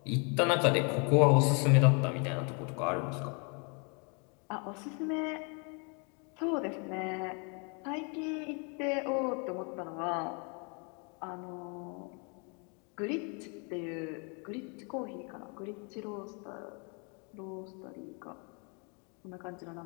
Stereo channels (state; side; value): quieter; right; 36.0 dB